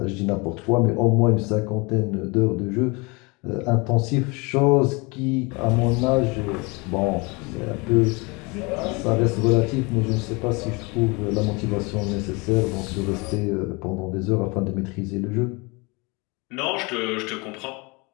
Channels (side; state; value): right; quieter; 27.7 dB